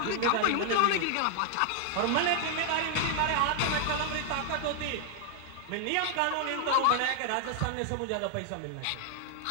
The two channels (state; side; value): different; both; correlation 0.00